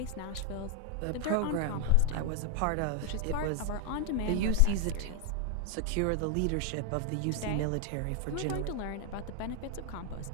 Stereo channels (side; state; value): both; different; correlation 0.01